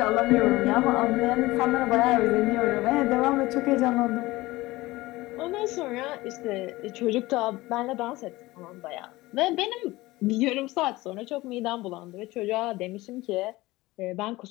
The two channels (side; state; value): right; quieter; 19.5 dB